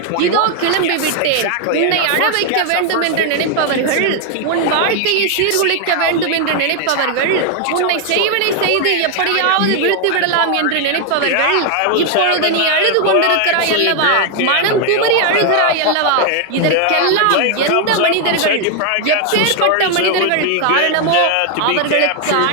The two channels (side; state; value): both; different; correlation 0.00